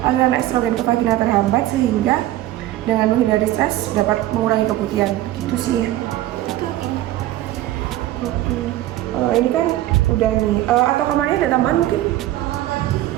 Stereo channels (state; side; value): quieter; left; 14.9 dB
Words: aliran estrogen ke vagina terhambat sehingga dengan menghindari stres dapat mengurangi keputihan. Gitu sih ya. Ini kan udah nih. Atau kamarnya ada tambahan mungkin?